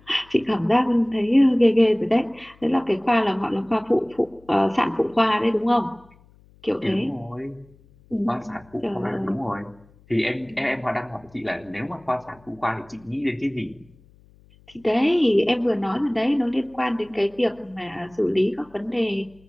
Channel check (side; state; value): left; noise; hum, 28 dB below the sound